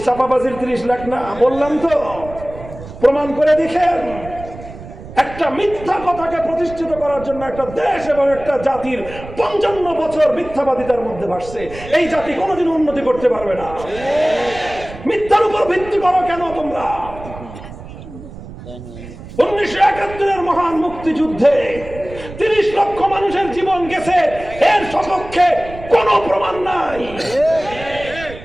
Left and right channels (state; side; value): noise; right; rumble, 14 dB below the sound